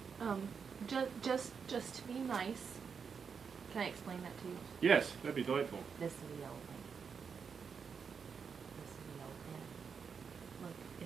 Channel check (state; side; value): quieter; left; 6.2 dB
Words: Just to be nice. Can I explain that to you? yes, that'd be delightful. This is the yellow planet. This is the yellow planet. Look,